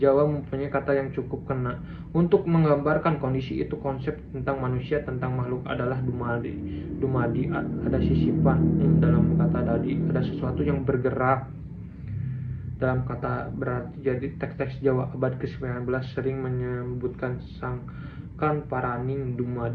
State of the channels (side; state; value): both; identical; correlation 1.00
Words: mempunyai kata yang cukup kena untuk menggambarkan kondisi itu. Konsep tentang manusia, tentang makhluk adalah dumadi, ada sisipan. Dalam kata dadi ada sesuatu yang bergerak. Dalam kata berarti. Jadi teks-teks Jawa abad ke-19 sering menyebutkan sangkan paraning